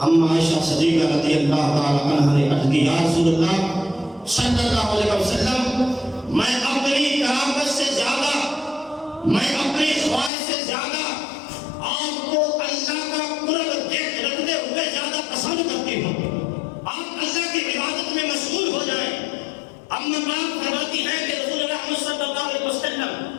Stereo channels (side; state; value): right; drops out; at 10.3 s